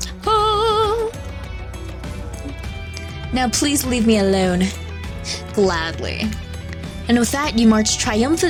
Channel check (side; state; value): both; identical; correlation 1.00